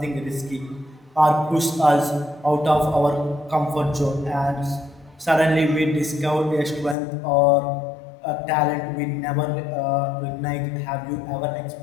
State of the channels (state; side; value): drops out; right; at 7.0 s